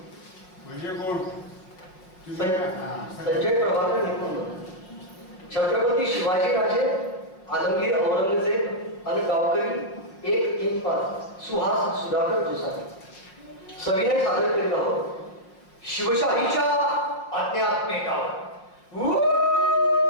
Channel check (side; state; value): right; late; 5.5 ms